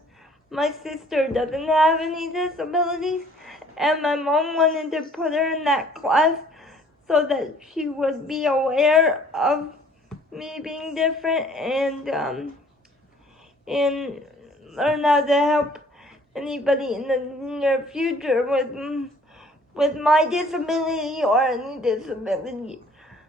my sister doesn't have any disabilities, and my mom wanted to put her in that class so that she would be aware of me being different, and learn how to help anybody in the near future with my disability or any disability,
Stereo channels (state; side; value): normal; both; correlation 0.56